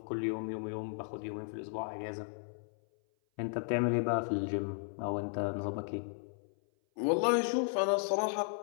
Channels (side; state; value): right; silent; 55 dB below the other